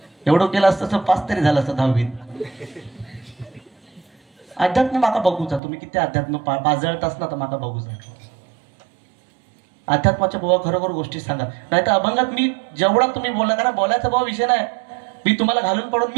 एवढं केलं असतं तर 5 तरी झालं असतं 10वीत. अध्यात्म माका बघूचा. तुम्ही किती अध्यात्म पाजळतास ना तर माका बघूचा. अध्यात्माच्या बुवा खरोखर गोष्टी सांगा, नाही तर अभंगात मी जेवढा तुम्ही बोला, कारण बोलायचा भाव विषय नाही. मी तुम्हाला घालून पडून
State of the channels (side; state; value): left; drops out; at 5.6 s